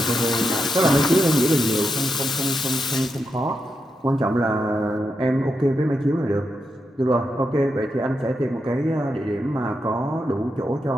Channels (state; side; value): normal; both; correlation 0.85